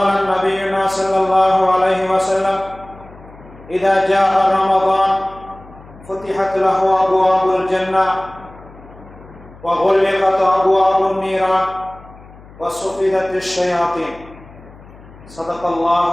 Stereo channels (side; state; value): left; noise; hum, 21 dB below the sound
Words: نبينا صلى الله عليه وسلم: إذا جاء رمضان فتحت له أبواب الجنة وغلقت أبواب النيران وصفدت الشياطين. صدق الله